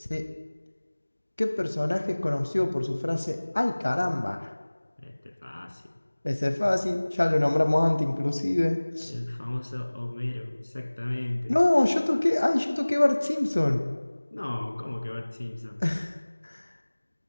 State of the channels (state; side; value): inverted; both; correlation -1.00